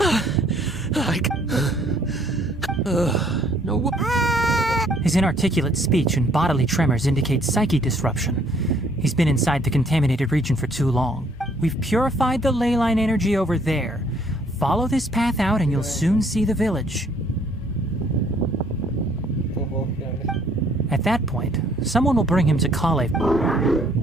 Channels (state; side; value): normal; both; correlation 0.63